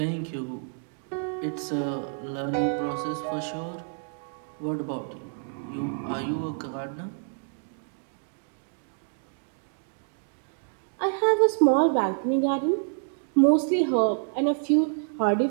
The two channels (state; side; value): silent; left; 59 dB below the other